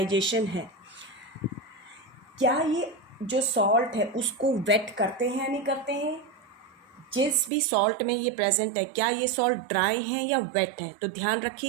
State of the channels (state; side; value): drops out; left; at 7.5 s